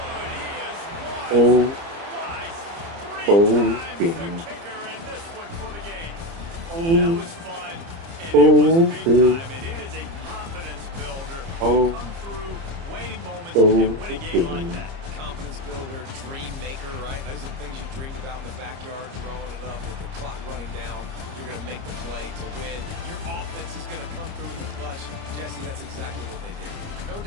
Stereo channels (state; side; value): late; left; 30 ms